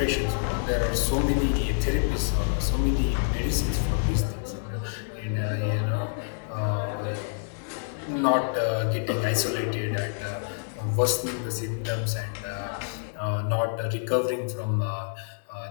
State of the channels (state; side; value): silent; right; digital silence